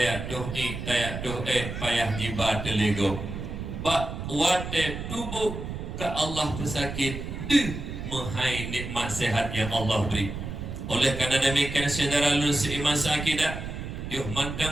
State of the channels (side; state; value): right; noise; rumble, 7 dB below the sound